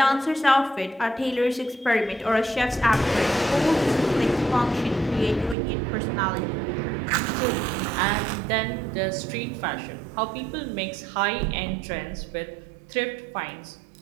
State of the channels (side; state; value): left; drops out; at 5.6 s